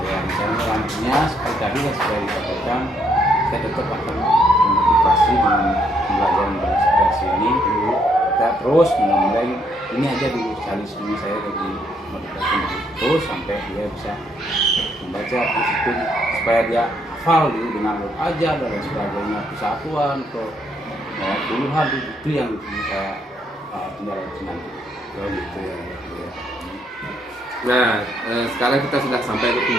rencana lanjutnya seperti tadi yang sudah dikatakan, saya tetap akan memotivasi dengan pembelajaran berekspresi ini. Kita terus mengembleng ini aja dulu, salisme saya lagi motivasi terus sampai dia bisa membaca itu supaya dia hafal dulu dengan huruf ajar dan lain sebagainya, kesatuan ke puluhan itu yang saya tinggal nanti. Gitu ya. Nah, sekarang kita sudah sampai ke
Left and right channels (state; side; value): normal; both; correlation 0.72